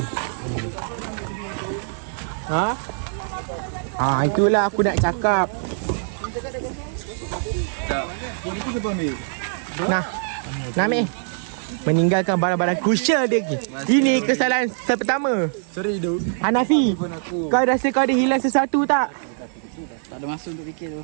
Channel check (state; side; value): silent; left; digital silence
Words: Itulah aku nak cakap. Ini tu siapa ambil? Nami meninggalkan barang-barang crucial dia lagi. Ini kesalahan pertama. Sorry Hidup. Hanafi, kau rasa kau ada hilang sesuatu tak? Tak ada masa untuk fikir tu.